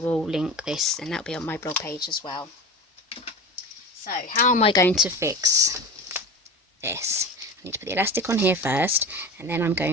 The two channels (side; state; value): both; normal; correlation 0.30